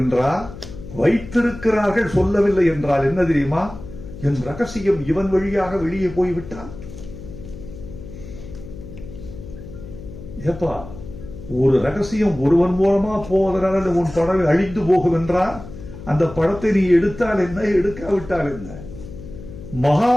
என்றால், வைத்திருக்கிறார்கள் சொல்லவில்லை என்றால் என்ன தெரியுமா, என் ரகசியம் இவன் வழியாக வெளியே போய்விட்டான். ஏப்பா, ஒரு ரகசியம் ஒருவன் மூலமா போவதனால உன் படம் அழிந்து போகும் என்றால் அந்த படத்தை நீ எடுத்தால் என்ன, எடுக்காவிட்டால் என்ன?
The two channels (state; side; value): noise; left; hum, 13 dB below the sound